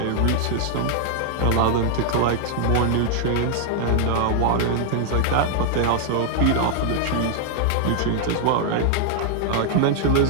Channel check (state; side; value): different; both; correlation 0.00